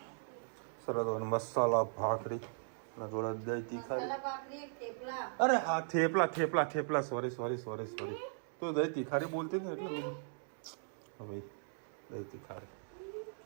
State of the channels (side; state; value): left; silent; digital silence